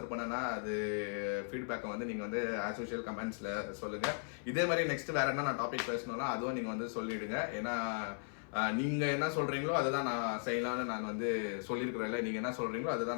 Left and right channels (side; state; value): right; silent; 53 dB below the other